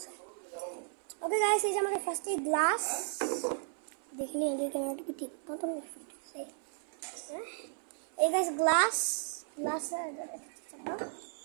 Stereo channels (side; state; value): left; silent; 55 dB below the other